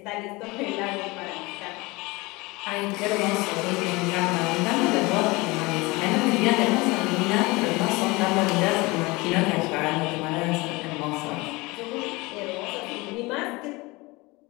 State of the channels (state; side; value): quieter; right; 23.5 dB